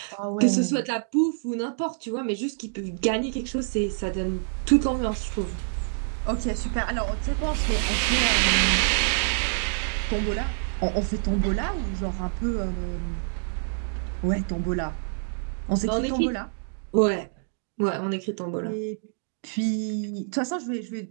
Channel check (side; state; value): left; silent; digital silence